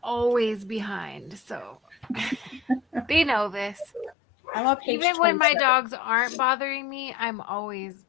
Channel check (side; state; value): right; drops out; at 4.2 s